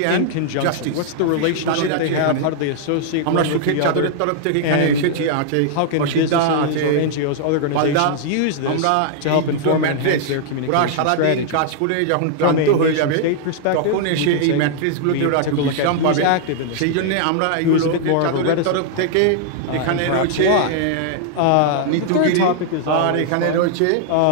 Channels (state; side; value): different; both; correlation -0.01